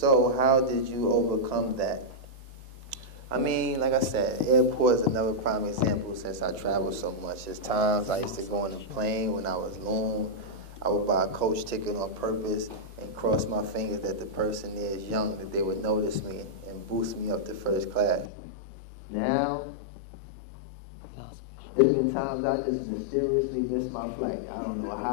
how did you overcome that? I mean, like I said, airport is another prime example since I travel so much. There's times I used to go on a plane when I was Loon. I would buy a coach ticket on purpose and cross my fingers that the person there is young, that they would notice me and boost me up to first class. Now, It's been times I just mysteriously missed my flight. I don't know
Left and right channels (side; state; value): right; drops out; at 18.2 s